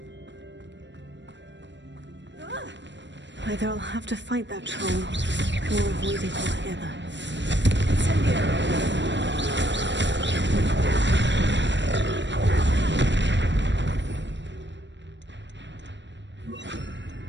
Either I'll have to fight that troll, or avoid it altogether.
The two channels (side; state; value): left; late; 0.53 ms